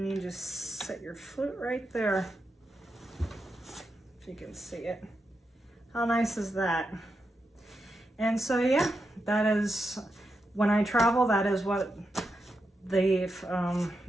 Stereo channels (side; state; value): both; normal; correlation 0.86